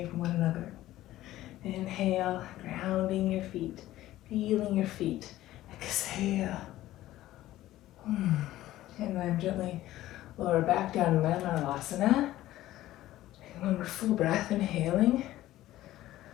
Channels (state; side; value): quieter; right; 15.0 dB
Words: from one another. Inhale, grounding your feet, feeling your feet. Exhale. And then gently lower back down to Manasana. One more full breath, inhaling.